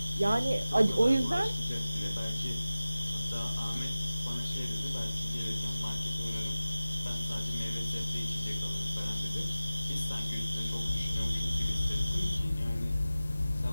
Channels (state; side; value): inverted; both; correlation -0.97